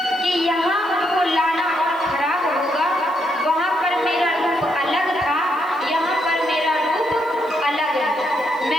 कि यहाँ उनको लाना और खराब होगा। वहां पर मेरा रूप अलग था, यहाँ पर मेरा रूप अलग है।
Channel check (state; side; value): noise; right; hiss, 28 dB below the sound